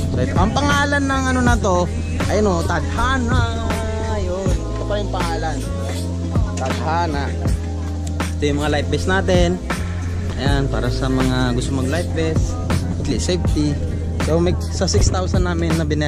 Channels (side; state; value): both; identical; correlation 1.00